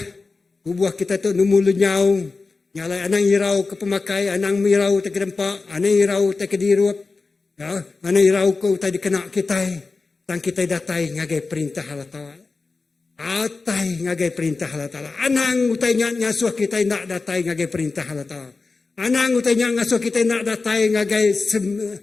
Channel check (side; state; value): right; quieter; 4.0 dB